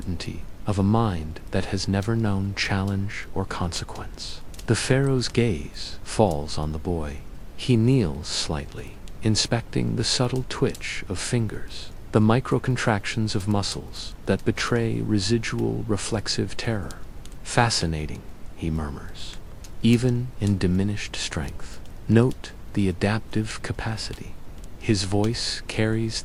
of a mind that has never known challenge or consequence. The pharaoh's gaze falls on the boy. He kneels slightly, inspecting the subtle twitch of fingers, the micro-contractions of muscles that betray residual reflexive terror. Fascinating, he murmurs. Even in diminished strength, note the adaptive capacity. His voice carries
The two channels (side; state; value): both; identical; correlation 1.00